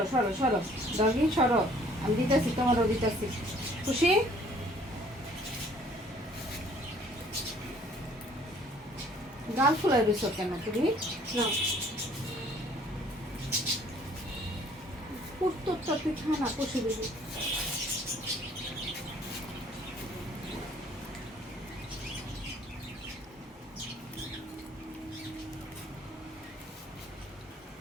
সরো সরো, ডগি সরো, আমি দিতেছি, তোমারও দিতেছি। খুশি? গাল ফুলাই দিছো কেন তুমি? না, উত্তরটা তুই খা না, খুশি দিবি।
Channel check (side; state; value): both; normal; correlation 0.57